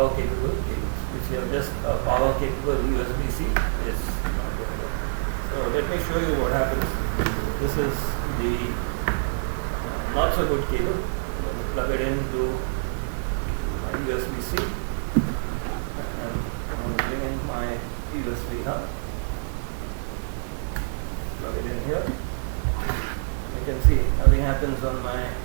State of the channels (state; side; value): silent; left; digital silence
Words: capable cables. If you have just a power capable USB-C, it's not going to work. So let me show you what happens. This is the not so good cable. I'm going to plug it into USB-C, and I'm going to bring in my USB hub, plug it in here. You can see nothing happens on my